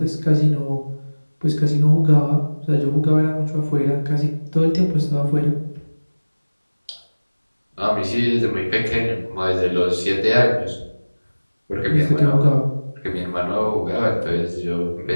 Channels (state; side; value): inverted; both; correlation -1.00